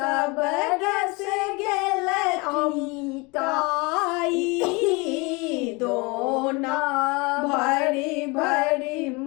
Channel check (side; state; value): right; quieter; 27.3 dB